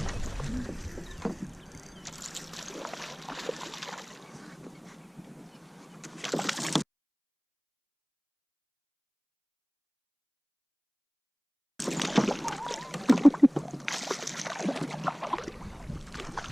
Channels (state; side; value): identical; both; correlation 1.00